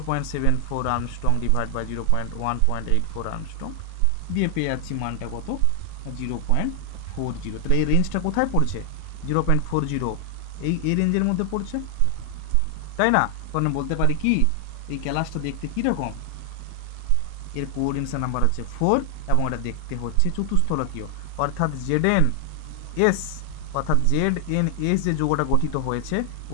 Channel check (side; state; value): both; different; correlation 0.00